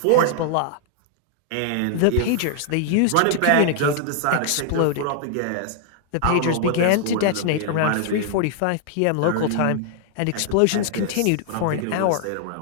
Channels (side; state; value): both; different; correlation -0.01